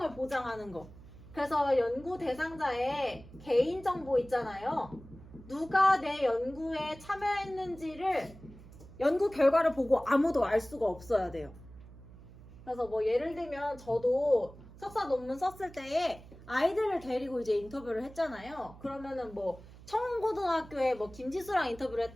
보장하는 거. 그래서 연구 대상자의 개인정보 있잖아요. 누가 내 연구에 참여했는지를 연구 결과를 보고 아무도 알 수가 없어야 돼요. 그래서 뭐 예를 들면 저도 석사 논문 썼을 때에 아이들을 데리고 이제 인터뷰를 했잖아요. 그러면은 뭐 청운고등학교에 뭐 김지수랑 인터뷰를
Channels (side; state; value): right; noise; hum, 19 dB below the sound